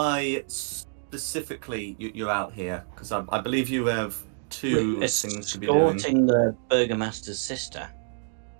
specifically you're out here? Because I believe you have two things to be doing. Escorting the Burgomaster's sister.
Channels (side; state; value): left; silent; digital silence